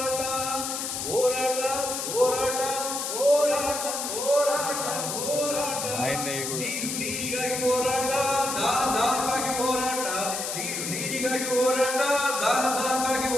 ಹೋರಾಟ ಹೋರಾಟ ಹೋರಾಟ ಹೋರಾಟ ಹೋರಾಟ ನೀರಿಗಾಗಿ ಹೋರಾಟ ದಾಹಕ್ಕಾಗಿ ಹೋರಾಟ ನೀರಿಗಾಗಿ ಹೋರಾಟ ದಾಹಕ್ಕಾಗಿ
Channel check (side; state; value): left; noise; hiss, 3 dB below the sound